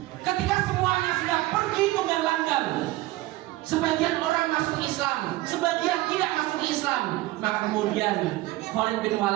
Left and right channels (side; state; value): left; quieter; 18.1 dB